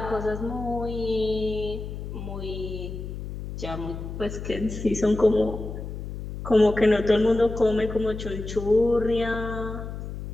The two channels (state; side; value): noise; left; hum, 8 dB below the sound